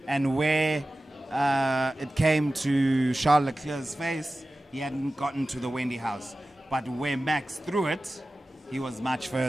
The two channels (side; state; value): both; normal; correlation 0.95